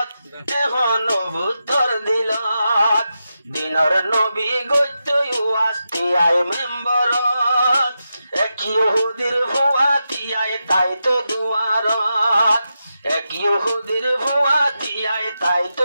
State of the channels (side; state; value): both; inverted; correlation -0.88